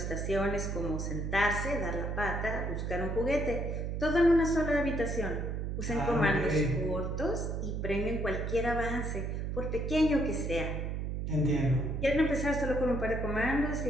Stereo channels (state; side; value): noise; right; hum, 2 dB below the sound